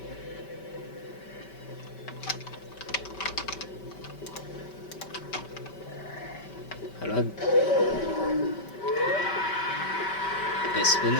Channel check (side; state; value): right; late; 5.2 ms